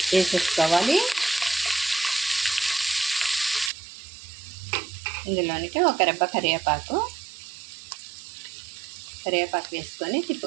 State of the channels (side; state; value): left; drops out; at 3.7 s